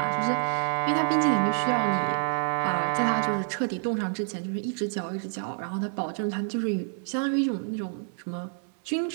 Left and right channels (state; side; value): silent; left; 60 dB below the other